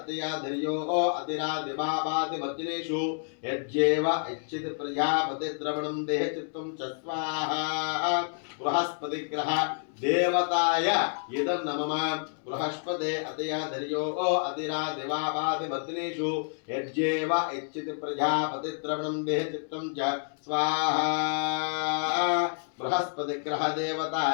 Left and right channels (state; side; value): silent; right; 59 dB below the other